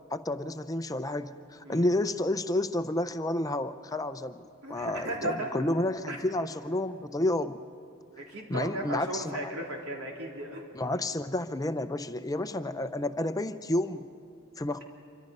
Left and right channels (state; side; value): normal; both; correlation 0.61